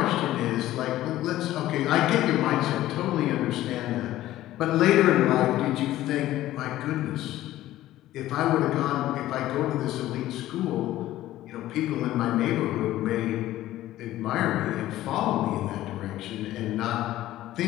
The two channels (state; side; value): quieter; right; 14.7 dB